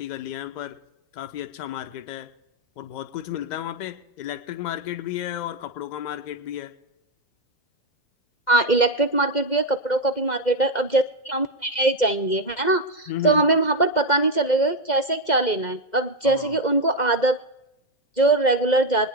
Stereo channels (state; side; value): late; right; 2.1 ms